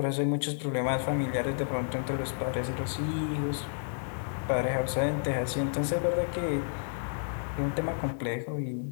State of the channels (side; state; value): right; silent; 57 dB below the other